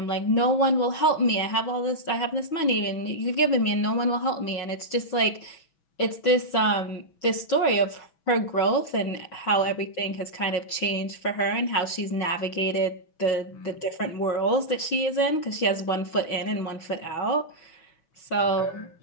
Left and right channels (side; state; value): right; late; 6.1 ms